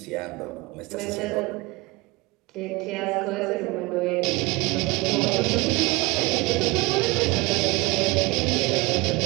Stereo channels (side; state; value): left; quieter; 23.6 dB